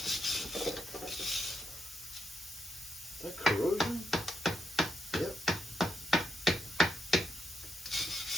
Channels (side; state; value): both; normal; correlation 0.80